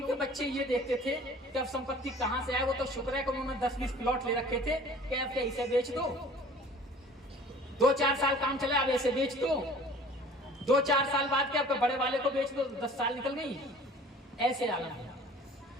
बच्चे ये देखते थे कि अब संपत्ति कहां से आए। वो तो शुक्र है कि उन्होंने 10-20 प्लॉट ले रखे थे कि अब इसे बेच दो, 2-4 साल काम चले, अब ऐसे बेच दो, 2-4 साल बाद के आपके बड़े वाले को बेच दो, 10 साल निकल गई। ऐसे आलम।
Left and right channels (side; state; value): both; normal; correlation 0.47